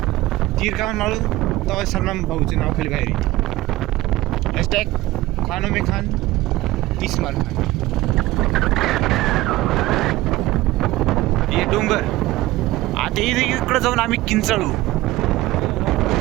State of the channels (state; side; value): quieter; left; 17.8 dB